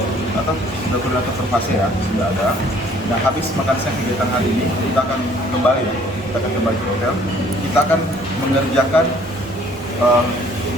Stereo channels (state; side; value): normal; both; correlation 0.58